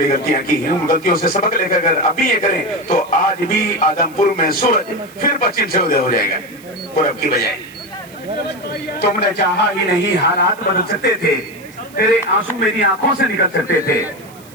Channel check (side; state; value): right; noise; hiss, 24 dB below the sound